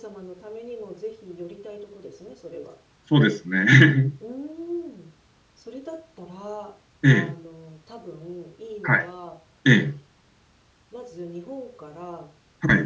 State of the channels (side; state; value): both; identical; correlation 1.00